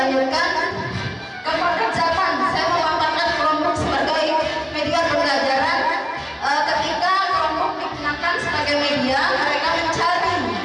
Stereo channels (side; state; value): both; identical; correlation 1.00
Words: ke pekerjaan. Saya memanfaatkan kelompok sebagai media pembelajaran. Ketika kelompok digunakan sebagai media, mereka mencari